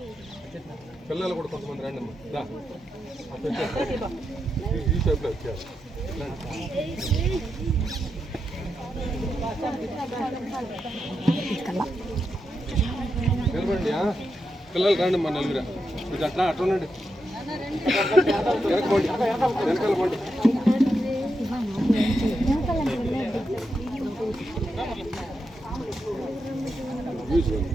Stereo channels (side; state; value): both; normal; correlation 0.85